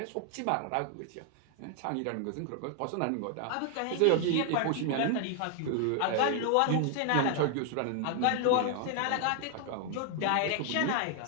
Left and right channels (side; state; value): both; different; correlation 0.00